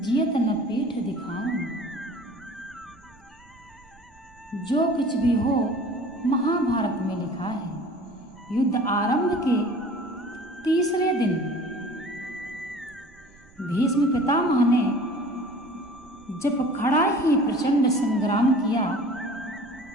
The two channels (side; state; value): right; noise; rumble, 28 dB below the sound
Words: न पीठ दिखाऊं। जो कुछ भी हो महाभारत में लिखा है। युद्ध आरंभ के तीसरे दिन भीष्म पितामह ने जब खड़ा ही प्रचंड संग्राम किया,